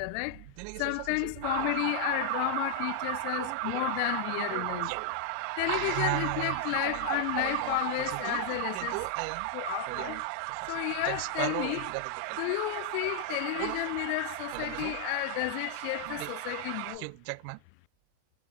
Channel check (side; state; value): both; different; correlation 0.00